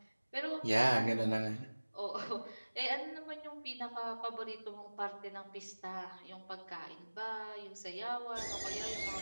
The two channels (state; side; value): inverted; both; correlation -1.00